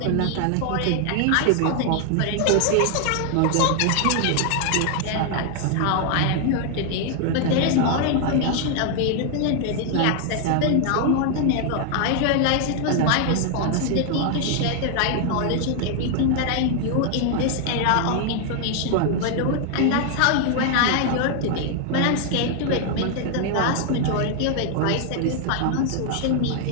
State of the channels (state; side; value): different; both; correlation 0.00